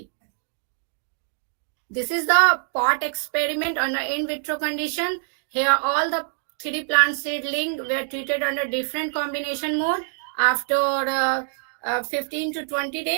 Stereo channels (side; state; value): left; silent; digital silence